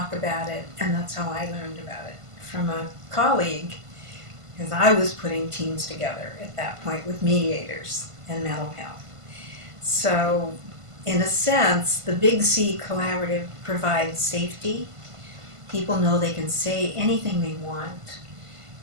about it, and that's how I learned about it from a colleague, because I was putting teams together at that point with mediators and mental health. So, in a sense, the Big C Collaborative provides safety. People know they can say anything they want.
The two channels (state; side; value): late; left; 1.5 ms